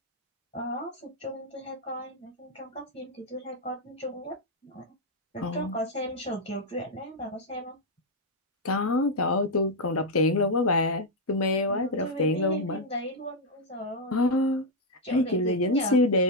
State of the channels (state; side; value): normal; both; correlation -0.01